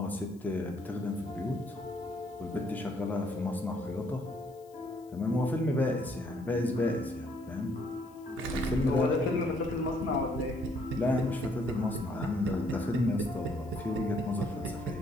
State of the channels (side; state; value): left; noise; hiss, 29 dB below the sound